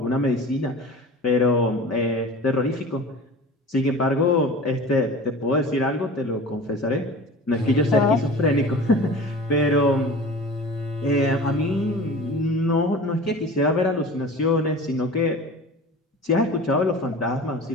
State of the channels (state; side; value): normal; both; correlation 0.38